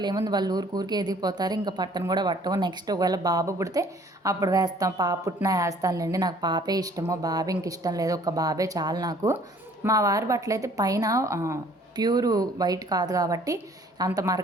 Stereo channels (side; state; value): both; normal; correlation 0.56